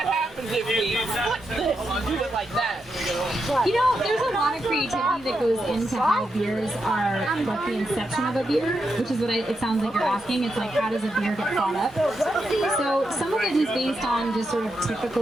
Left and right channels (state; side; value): normal; both; correlation 0.85